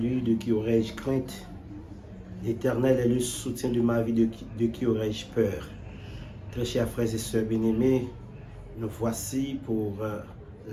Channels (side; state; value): both; identical; correlation 1.00